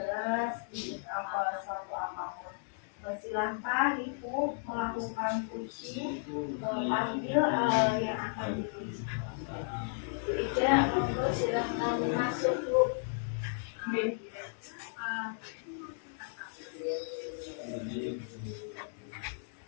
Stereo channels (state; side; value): silent; right; digital silence